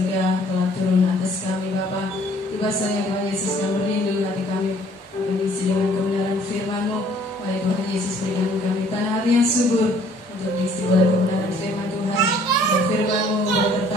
telah turun atas kami Bapa. Bahasanya Tuhan Yesus kami merindu hati kami akan diisi dengan kebenaran firman-Mu. Wahai Tuhan Yesus, berikan kami tanah hati yang subur untuk diisi oleh kebenaran firman Tuhan. Dan firman-Mu boleh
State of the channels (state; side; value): normal; both; correlation 0.58